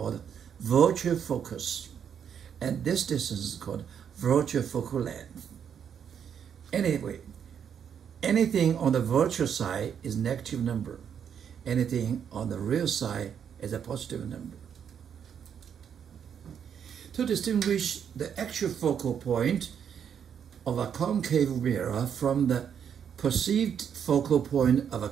virtual focus. And this distance is called virtual focal length. Anyway, anything on the virtual side is negative number. Anything on the real side is a positive number. To distinguish the actual focal point of a concave mirror from the perceived focal point of a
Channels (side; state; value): left; quieter; 8.1 dB